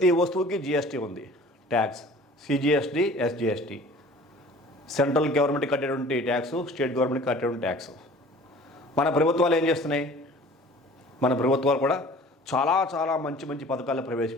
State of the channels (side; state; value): both; normal; correlation 0.47